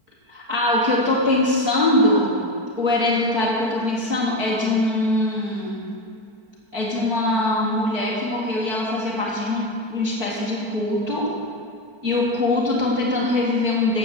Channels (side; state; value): left; late; 4.5 ms